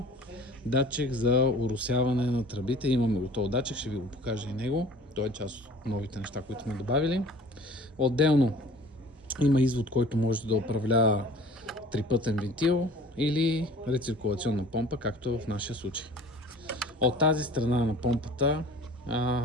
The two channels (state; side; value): normal; both; correlation 0.47